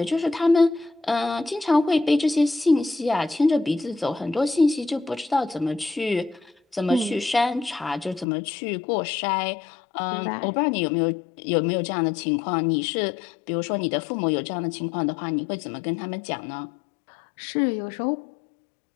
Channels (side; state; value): right; drops out; at 8.2 s